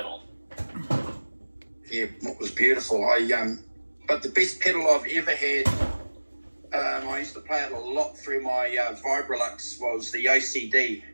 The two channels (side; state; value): both; inverted; correlation -1.00